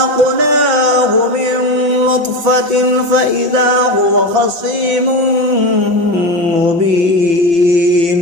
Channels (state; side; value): late; left; 5.8 ms